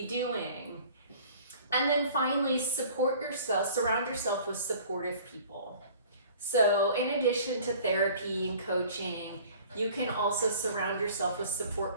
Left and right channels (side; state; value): both; inverted; correlation -0.49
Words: doing. And then finally, surround yourself with supportive people. So in addition to therapy and coaching, you can also surround yourself with support